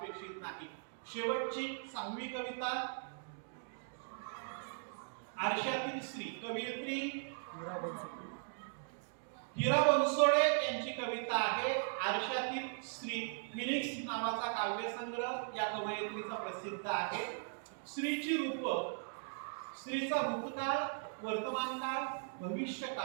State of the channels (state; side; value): silent; left; digital silence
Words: नाही. शेवटची 6वी कविता आरशातील स्त्री, कवयित्री हिरा बनसोडे यांची कविता आहे. आरशातील स्त्री फिनिक्स नावाचा काव्यसंग्रह या कवयित्रीचा प्रसिद्ध आहे. स्त्रीची रूप, स्त्रीचा भूतकाळ, वर्तमानकाळ,